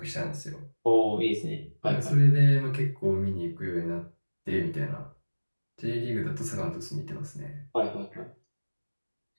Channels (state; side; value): inverted; both; correlation -1.00